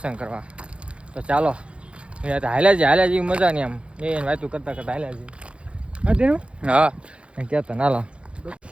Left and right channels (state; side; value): late; left; 0.059 ms